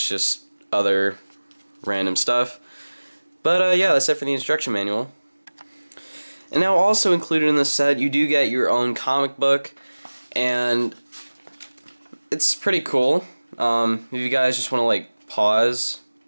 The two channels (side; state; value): both; inverted; correlation -1.00